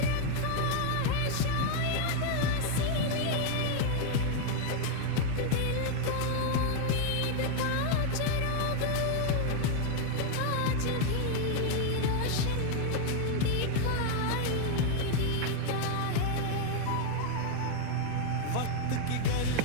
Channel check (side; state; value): both; different; correlation 0.00